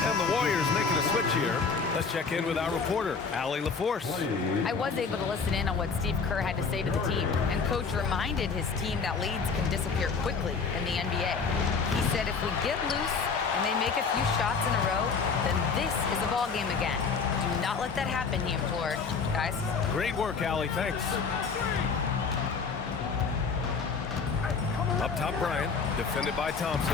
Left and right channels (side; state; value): right; quieter; 5.2 dB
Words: Warriors making a switch here. Let's check in with our reporter, Allie LaForce. I was able to listen in on what Steve Kerr had to say to the team, and Coach reminded his team that leads can disappear quickly in the NBA. He said if we get loose and they make a few shots in a row, then this is a ball game again. Do not let that happen, he implored. Guys? Great work, Allie. Thanks. Up top, Bryant, defended by